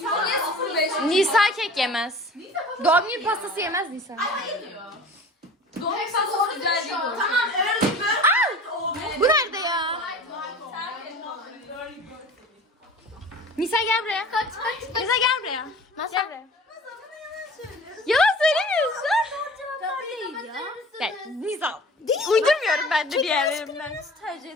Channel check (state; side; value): normal; both; correlation 0.41